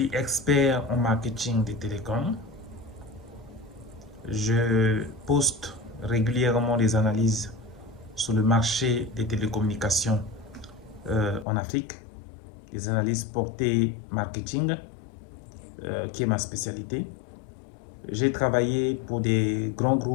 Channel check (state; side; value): drops out; right; at 11.5 s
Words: expert en marketing des télécoms. Je poste régulièrement des analyses sur le marché des télécommunications en Afrique, des analyses portées marketing, qui est ma spécialité. J'ai travaillé pour des grands